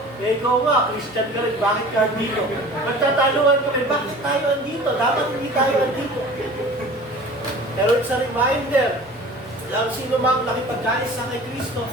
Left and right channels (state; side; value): normal; both; correlation 0.42